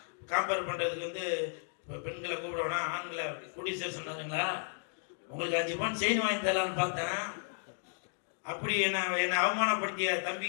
காம்பேர் பண்ணுறதுக்கு வந்து பெண்களை கூப்பிடுவானா ஆண்களை கூட்டிட்டு சொன்னாருங்களா, உங்களுக்கு 5 பவுன் செயின் வாங்கி தரலான்னு பார்த்தேன். அப்படி என்னை அவமானப்படுத்திய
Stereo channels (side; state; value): right; silent; 55 dB below the other